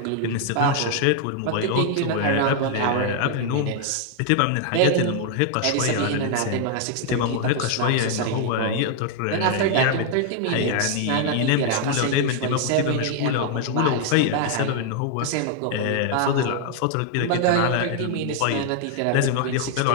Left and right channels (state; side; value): different; both; correlation 0.00